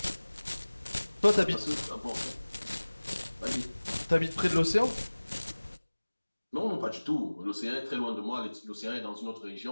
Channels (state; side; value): inverted; both; correlation -1.00